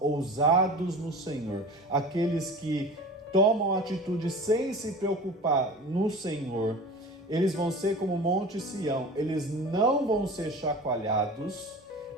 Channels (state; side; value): normal; both; correlation 0.36